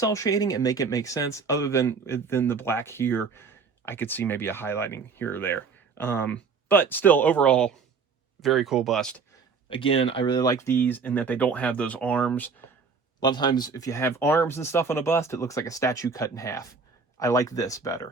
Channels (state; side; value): quieter; left; 5.1 dB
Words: shading and make it make sense. Other than the black here, I could see maybe a highlighting here or there. But still, overall, very cool bust. Again, I really like these in that they don't have those arms. A lot of times, if you have arms and stuff on a bust, it looks like a statue cut in half. I like this